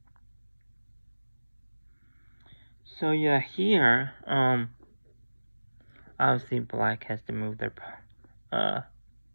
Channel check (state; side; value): inverted; both; correlation -1.00